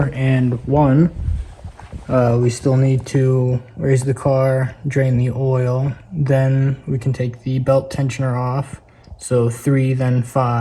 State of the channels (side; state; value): both; identical; correlation 1.00